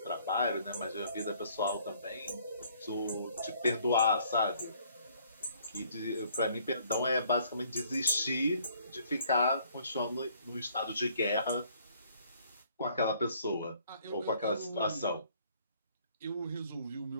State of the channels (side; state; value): both; inverted; correlation -0.62